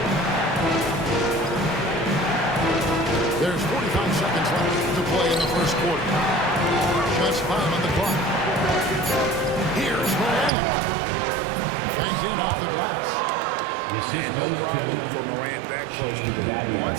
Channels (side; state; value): left; drops out; at 10.5 s